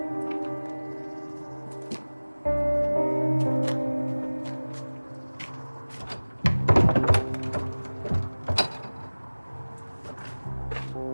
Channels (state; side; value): inverted; both; correlation -1.00